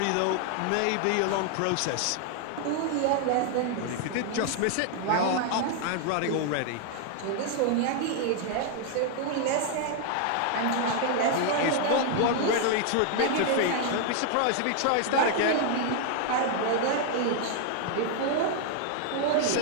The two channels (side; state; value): both; different; correlation 0.00